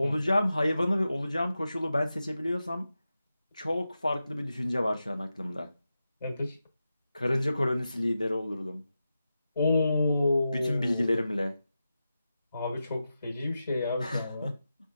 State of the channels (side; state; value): both; inverted; correlation -0.91